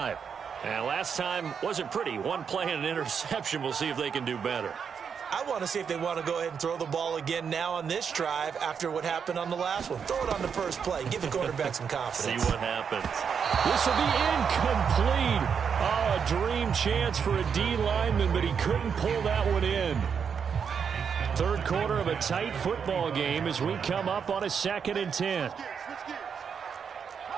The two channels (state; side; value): quieter; left; 6.8 dB